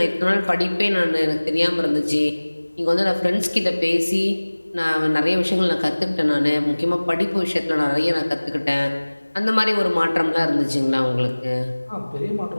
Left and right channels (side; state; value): both; inverted; correlation -1.00